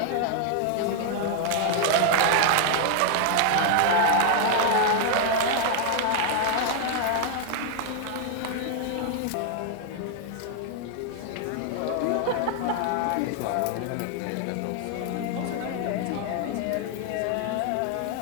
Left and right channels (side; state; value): both; different; correlation 0.00